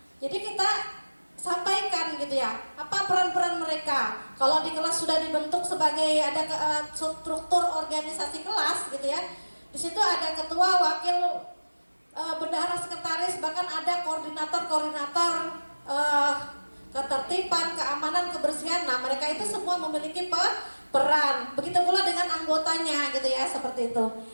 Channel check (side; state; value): both; inverted; correlation -1.00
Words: jadi kita sampaikan gitu ya, apa peran-peran mereka. Kalau di kelas sudah dibentuk sebagai ada struktur organisasi kelas gitu ya. Di situ ada ketua, wakil, bendahara, sekretaris, bahkan ada koordinator ketertiban, keamanan, kebersihan. Nah, mereka itu semua memiliki peran. Begitu pula dengan anggotanya gitu ya, seperti itu.